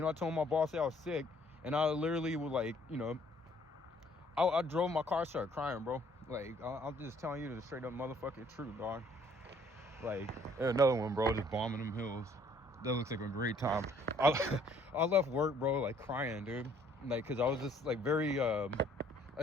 know, I told my boss I was sick, and I literally was like, you know, I drove my car, started crying, bro. Like, I'm just telling you the straight up motherfucking truth, dog. Like, another one, bro, just bombing them hills. That looks like a great time. I left work, bro, like crying, dude. Like, cause I was just like very, I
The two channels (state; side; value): normal; both; correlation 0.61